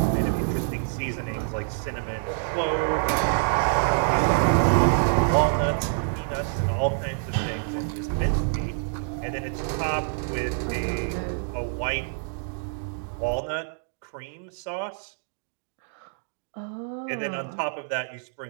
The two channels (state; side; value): silent; left; digital silence